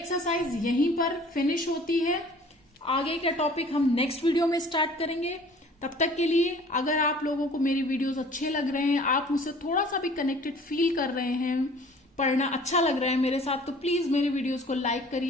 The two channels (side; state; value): both; normal; correlation 0.50